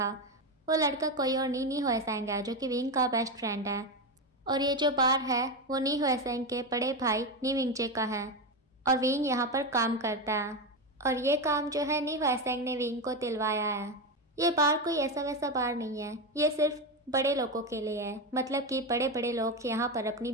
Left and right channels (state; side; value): normal; both; correlation 0.14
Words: वो लड़का कोई और नी हुएसेंग है, जो कि विंग का बेस्ट फ्रेंड है। और ये जो बार है वो नी हुएसेंग के बड़े भाई नी विंगजे का है और विंग यहाँ पर काम करता है। और ये काम जो है नी हुएसेंग ने विंग को दिलवाया है। ये बार कोई ऐसा वैसा बार नहीं है, ये सिर्फ बड़े लोगों के लिए है। मतलब कि बड़े बड़े लोग यहाँ पर अपनी